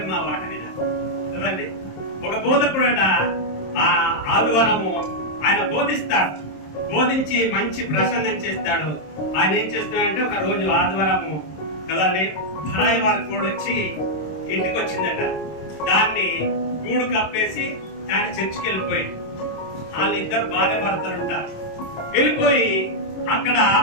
మా మాట వినాలి కదండి. ఒక బోధకుడట ఆదివారము ఆయన బోధిస్తాడు, బోధించి మంచి ప్రసంగం చేస్తాడు. ఆయన ఏం చేస్తున్నాడంటే ఒక రోజు ఆదివారము కదండి పరాయి వారి కోడి వచ్చి ఇంటికి వచ్చిందట. దాన్ని గూడు కప్పేసి ఆయన చర్చికి వెళ్ళిపోయాడు. వాళ్ళిద్దరు భార్య భర్తలు ఉంటారు. వెళ్ళిపోయి అక్కడ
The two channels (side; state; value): right; late; 26 ms